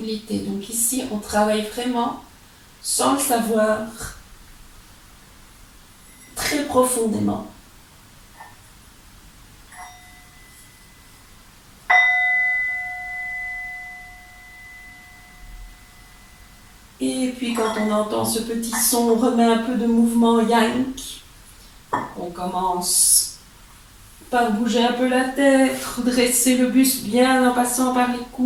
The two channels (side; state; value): both; identical; correlation 1.00